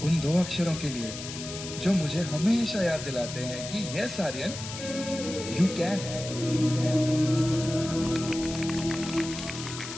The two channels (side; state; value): left; noise; hiss, 9 dB below the sound